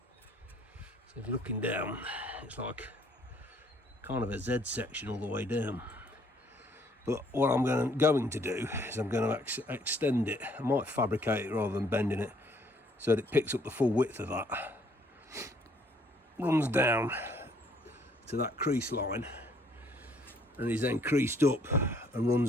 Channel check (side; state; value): both; normal; correlation 0.64